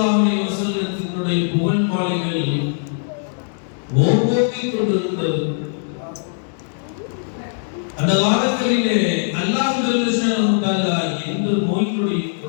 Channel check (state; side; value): silent; right; digital silence